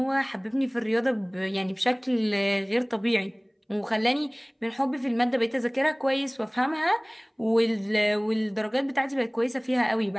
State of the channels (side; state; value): both; identical; correlation 1.00